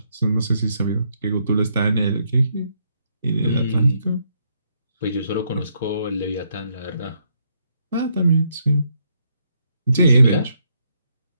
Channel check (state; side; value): inverted; both; correlation -0.75